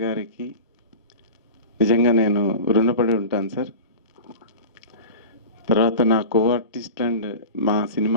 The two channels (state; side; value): inverted; both; correlation -0.33